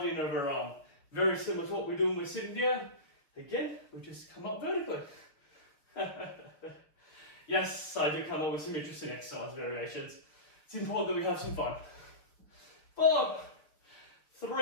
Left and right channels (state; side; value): late; right; 6.1 ms